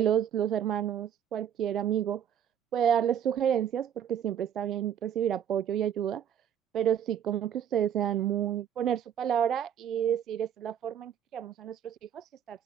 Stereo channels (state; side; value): quieter; left; 9.4 dB